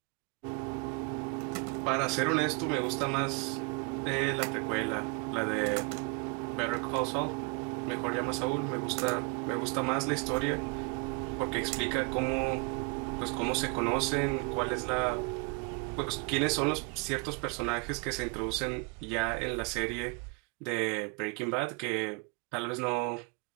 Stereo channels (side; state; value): left; quieter; 30.6 dB